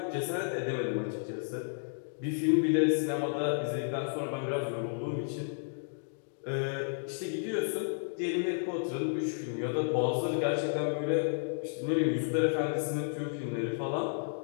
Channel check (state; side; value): silent; right; digital silence